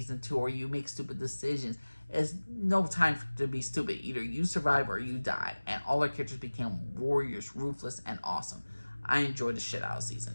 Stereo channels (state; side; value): inverted; both; correlation -1.00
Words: 2, or you make stupid decisions. It's no time to be stupid. Either you survive or you die. And all our characters became warriors, ruthless, and awesome. I enjoyed the shit out of